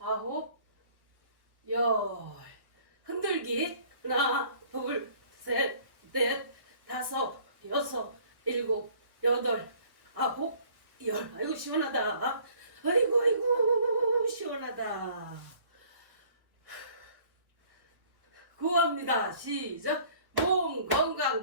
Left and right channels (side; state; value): left; late; 1.1 ms